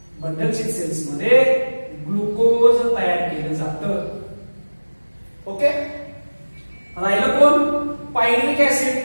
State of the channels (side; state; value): both; inverted; correlation -1.00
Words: बंडल सेल्स मध्ये ग्लुकोज तयार केलं जातं. ओके, राहिलं कोण, पायरुव्हिक acid.